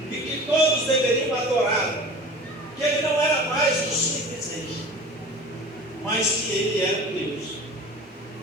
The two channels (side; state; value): both; normal; correlation 0.39